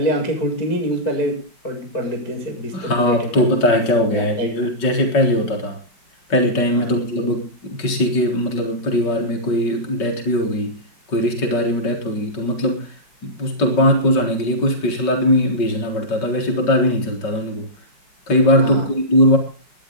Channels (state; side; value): late; right; 5.3 ms